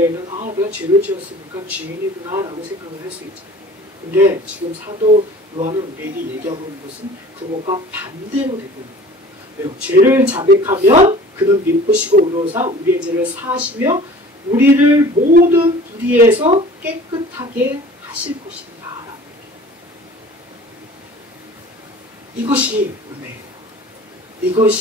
내가 죄를 지었으니까 죄인이구나 라고 생각을 할 수 있잖아요. 근데 지금 사도 요한은 우리에게 얘기하고 있는 것은 그것과 반대로 되고 있는 거예요. 왜요? 죄를 자백하면 그는 미쁘시고 의로우사 우리의 죄를 사하시며 우리를 모든 불의에서 깨끗하게 하실 것입니다. 라고 얘기해요. 이것이 은혜예요.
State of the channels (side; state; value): both; normal; correlation 0.45